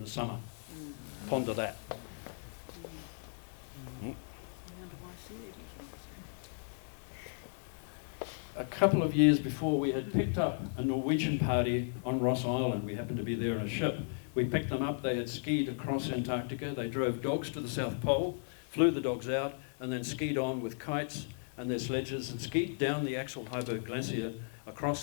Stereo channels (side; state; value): right; silent; 54 dB below the other